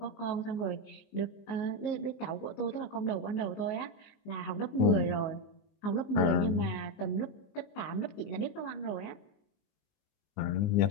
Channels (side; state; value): right; late; 19 ms